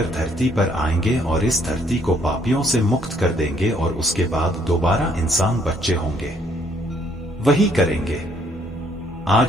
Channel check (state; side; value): normal; both; correlation 0.66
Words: धरती पर आएंगे और इस धरती को पापियों से मुक्त कर देंगे और उसके बाद दोबारा इंसान बच्चे होंगे, वही करेंगे।